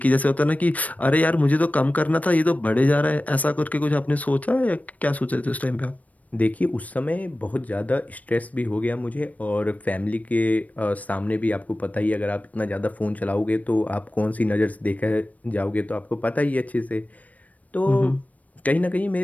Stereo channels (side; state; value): right; late; 0.071 ms